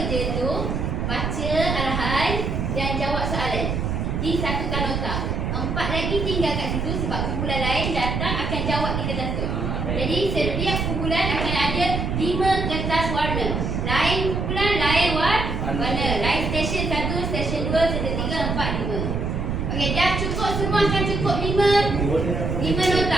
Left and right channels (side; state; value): right; noise; rumble, 1 dB below the sound